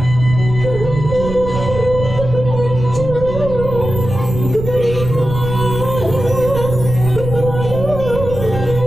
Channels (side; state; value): right; noise; rumble, 7 dB below the sound